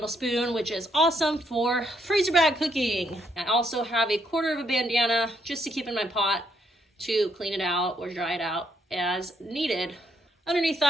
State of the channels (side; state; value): both; normal; correlation 0.74